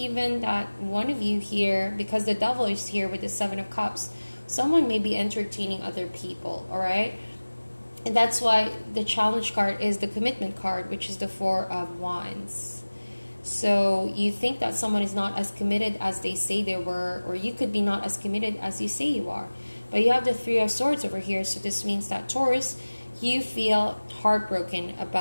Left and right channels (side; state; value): both; inverted; correlation -1.00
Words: that one of you here, because the Devil is here with the Seven of Cups, someone may be entertaining other people, all right? And that's why the challenge card is the commitment card, which is the Four of Wands. So you think that someone is not as committed as they say they were, or you could be not as committed as you say you are. But you have the Three of Swords over here, so this means that, Taurus, you feel heartbroken